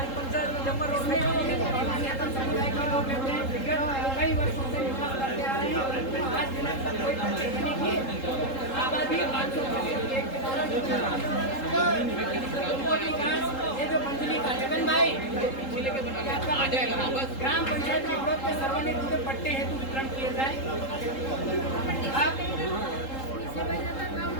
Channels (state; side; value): late; right; 3.8 ms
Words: इसमें अपने मान्यता समुदाय के लोग रहते हैं, विगत कई वर्षों से निवास करते आ रहे हैं। आज दिनों तक कोई तब्दीली नहीं की। आबादी 500 एक के कारण उनको विकास ये जो मंजली का जगन भाई आ जाएगा बस ग्राम पंचायत के विरोध में सर्वानुमत पट्टे हेतु वितरण किए जाए।